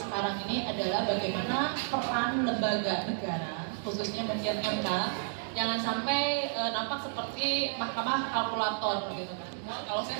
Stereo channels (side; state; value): left; silent; digital silence